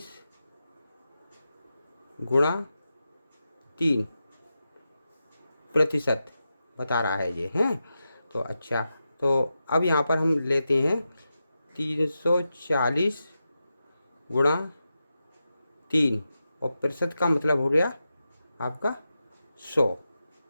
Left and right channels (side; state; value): both; inverted; correlation -0.90